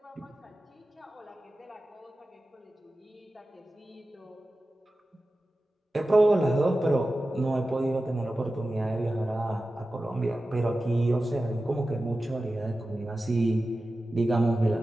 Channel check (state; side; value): normal; both; correlation 0.94